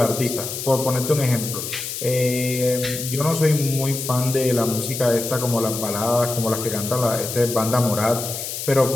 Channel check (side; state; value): left; noise; hiss, 6 dB below the sound